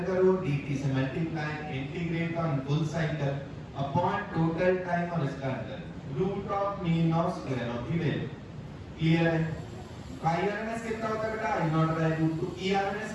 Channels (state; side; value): identical; both; correlation 1.00